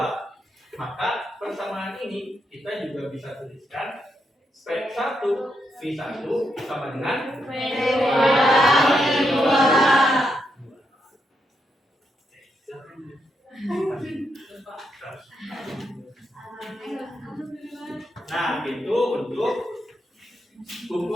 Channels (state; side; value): normal; both; correlation 0.81